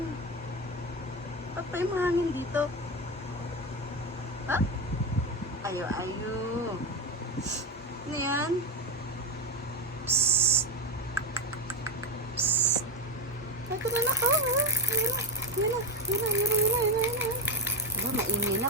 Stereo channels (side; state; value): both; normal; correlation 0.13